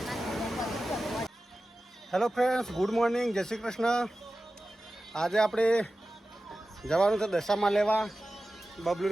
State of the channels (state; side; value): normal; both; correlation 0.94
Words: હેલો ફ્રેન્ડ્સ, ગુડ મોર્નિંગ, જય શ્રી કૃષ્ણ. આજે આપણે જવાનું છે દશામાં લેવા.